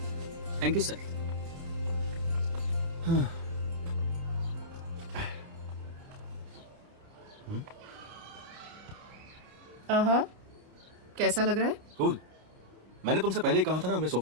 Thank you sir. कैसा लग रहा है? कूल। मैंने तुमसे पहले ही कहा था ना हमें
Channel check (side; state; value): left; late; 30 ms